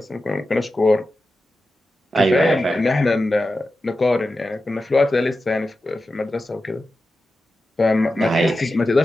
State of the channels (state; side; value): normal; both; correlation 0.92